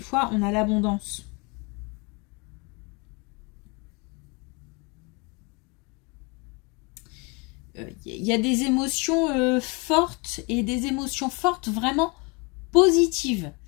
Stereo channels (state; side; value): quieter; right; 29.7 dB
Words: on a l'abondance. Il y a des émotions fortes et des émotions fortes vraiment positives.